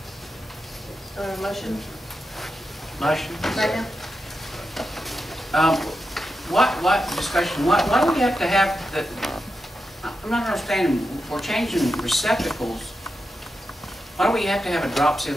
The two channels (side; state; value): both; normal; correlation 0.88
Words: Motion? Motion? Second? What discussion, why do we have to have the, I'm not understanding, we're changing receptacles. Why do we have to have a drop